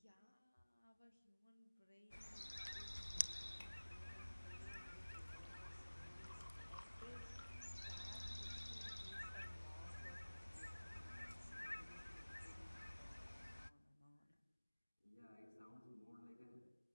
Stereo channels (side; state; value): both; inverted; correlation -1.00